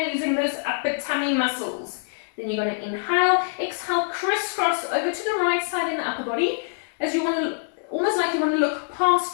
using those upper tummy muscles. Then you're going to inhale, exhale, crisscross over to the right side in the upper body as you want to, almost like you want to look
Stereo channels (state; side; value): silent; right; digital silence